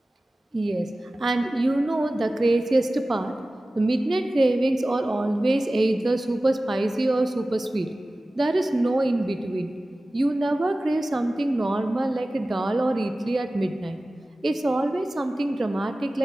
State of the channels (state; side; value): normal; both; correlation 0.97